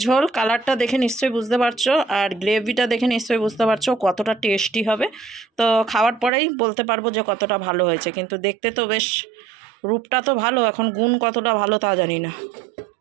ঝোল কালারটা দেখে নিশ্চয়ই বুঝতে পারছো, আর গ্রেভিটা দেখে নিশ্চয়ই বুঝতে পারছো কতটা টেস্টি হবে। তো খাওয়ার পরেই বলতে পারবো যে কতটা ভালো হয়েছে, কিন্তু দেখতে তো বেশ রূপটা তো ভালো, এখন গুণ কতটা ভালো তা জানি না।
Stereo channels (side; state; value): left; drops out; at 6.3 s